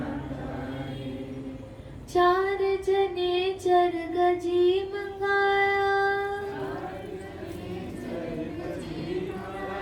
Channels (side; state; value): both; identical; correlation 1.00